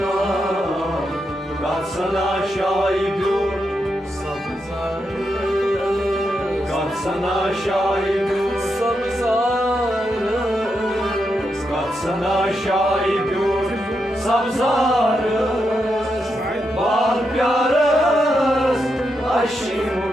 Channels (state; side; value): normal; both; correlation 0.84